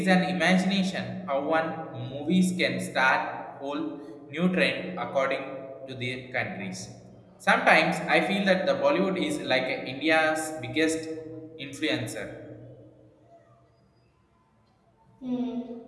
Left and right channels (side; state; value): both; identical; correlation 1.00